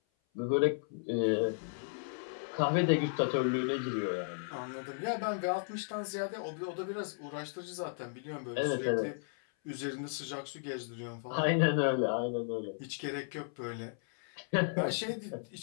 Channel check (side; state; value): right; silent; 55 dB below the other